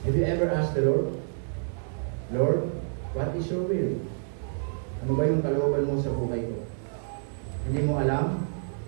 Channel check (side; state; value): left; silent; digital silence